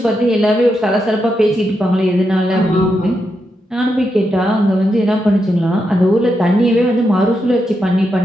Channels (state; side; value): normal; both; correlation 0.84